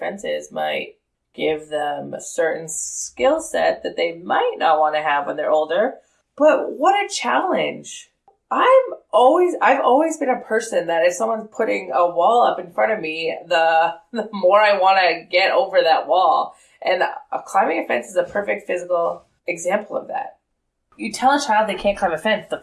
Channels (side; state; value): both; identical; correlation 1.00